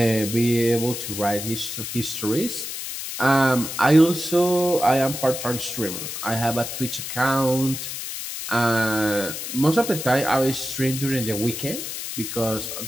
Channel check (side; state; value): left; noise; hiss, 6 dB below the sound